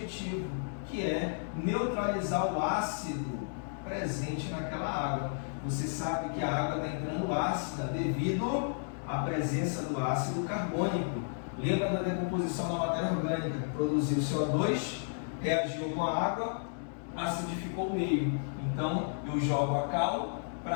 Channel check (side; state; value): right; silent; digital silence